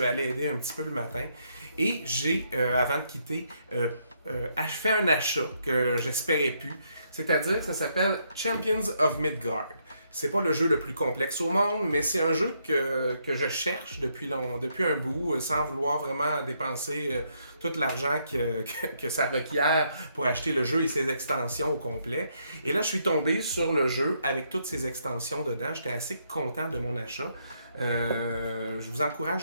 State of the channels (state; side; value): inverted; both; correlation -0.75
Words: allé aider un petit peu le matin et j'ai, avant de quitter, fait un achat que j'espérais plus, c'est-à-dire que ça s'appelle Champions of Midgard. C'est pas le jeu le plus complexe au monde, mais c'est un jeu que je cherche depuis un bout, sans vouloir vraiment dépenser tout l'argent que ça requiert pour acheter le jeu et ses extensions au complet. Et là, je suis tombé sur le jeu avec toutes ses extensions dedans. J'étais assez content de mon achat. Je vous